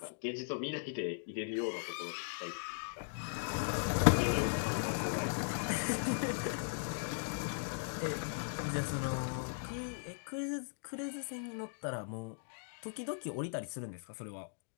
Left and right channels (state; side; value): silent; right; digital silence